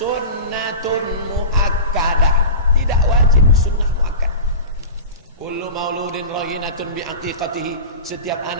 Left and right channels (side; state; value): both; inverted; correlation -0.32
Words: muakkadah, tidak wajib, sunnah muakkad. Kullu mauludin raghinatun bi aqiqatihi, setiap